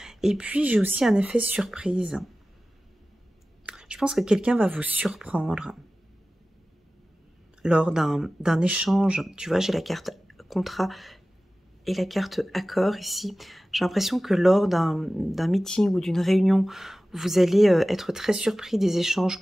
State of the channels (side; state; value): both; normal; correlation 0.96